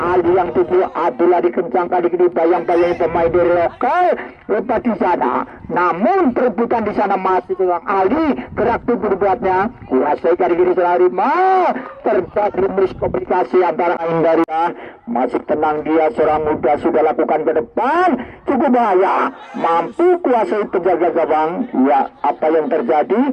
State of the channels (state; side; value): identical; both; correlation 1.00